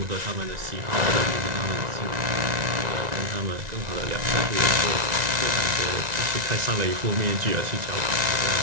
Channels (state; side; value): late; left; 1.9 ms